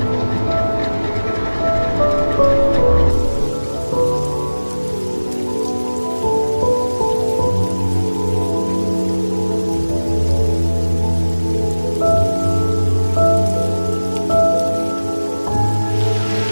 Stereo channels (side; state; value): both; inverted; correlation -1.00